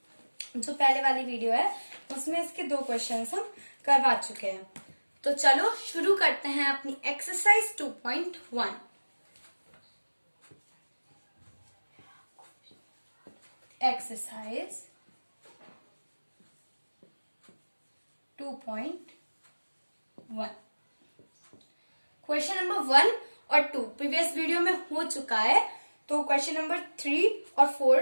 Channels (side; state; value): both; inverted; correlation -1.00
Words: जो पहले वाली वीडियो है उसमें इसके 2 क्वेश्चन हम करवा चुके हैं। तो चलो शुरू करते हैं अपनी एक्सरसाइज 2.1। एक्सरसाइज 2.1 क्वेश्चन नंबर 1 और 2 प्रीवियस वीडियो में हो चुका है। तो क्वेश्चन नंबर 3 और